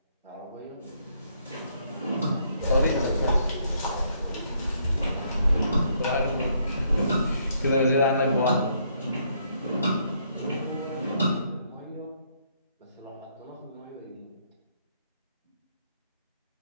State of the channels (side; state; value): both; inverted; correlation -0.71